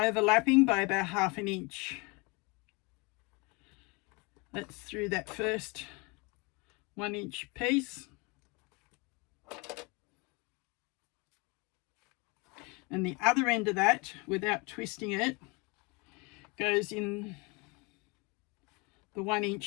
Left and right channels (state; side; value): quieter; right; 28.6 dB